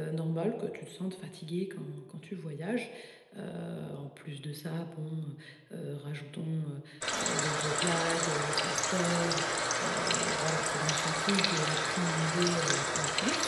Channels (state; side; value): identical; both; correlation 1.00